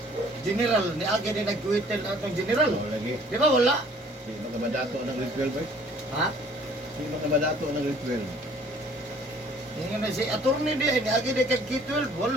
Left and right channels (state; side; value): normal; both; correlation 0.55